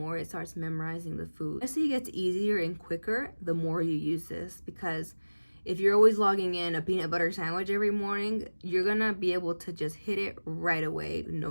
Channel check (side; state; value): both; inverted; correlation -1.00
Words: it starts memorizing the food. As it gets easier and quicker, the more you use this, because if you're always logging in a peanut butter sandwich every morning, you're gonna be able to just hit it right away,